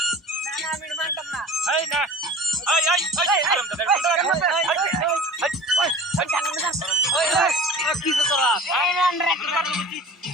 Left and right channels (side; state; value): both; normal; correlation 0.40